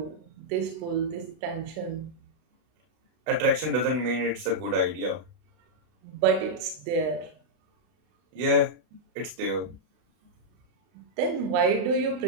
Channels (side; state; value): left; late; 32 ms